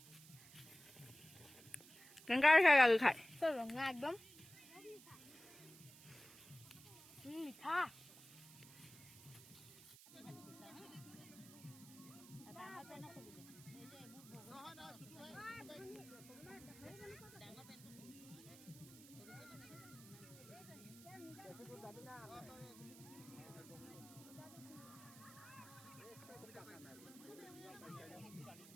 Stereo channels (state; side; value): noise; right; hiss, 18 dB below the sound